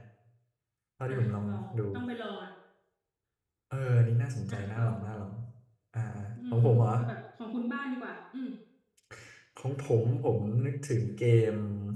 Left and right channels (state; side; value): identical; both; correlation 1.00